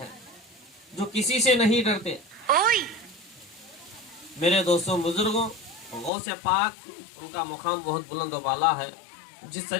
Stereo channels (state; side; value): drops out; right; at 6.1 s